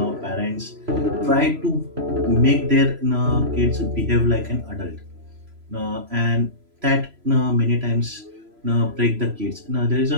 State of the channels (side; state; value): left; late; 3.0 ms